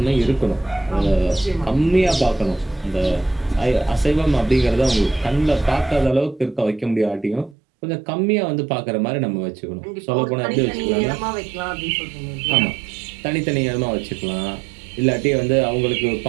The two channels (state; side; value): drops out; left; at 7.6 s